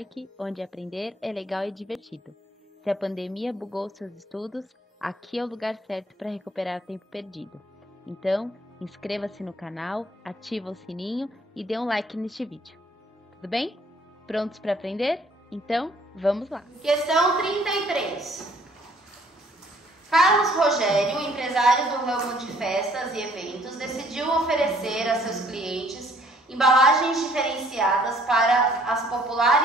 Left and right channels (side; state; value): both; normal; correlation 0.60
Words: onde aprender é legal e divertido. Se a pandemia bugou seus estudos, aqui é o lugar certo para recuperar o tempo perdido. Então, inscreva-se no canal, ativa o sininho e dê um like neste vídeo. Tudo bem? Prontos para aprender? Então, vamos lá! Questão 33. Carlos Rogério, empresário do ramo de festas e eventos, decidiu oferecer a seus clientes embalagens diferenciadas para as